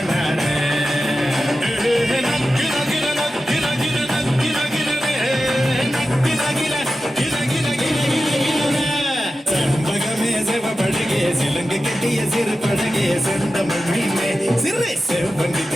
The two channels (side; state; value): both; normal; correlation 0.93